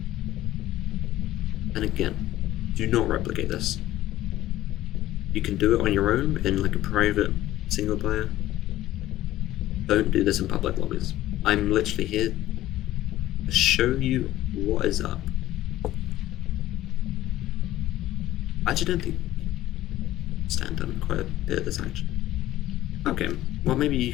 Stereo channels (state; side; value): quieter; right; 14.7 dB